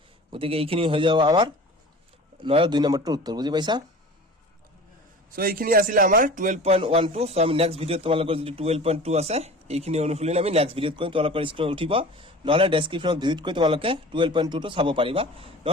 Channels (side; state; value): both; normal; correlation 0.40